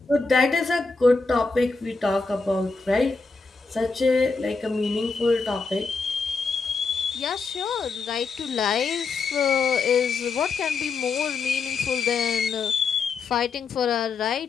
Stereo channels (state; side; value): quieter; right; 4.4 dB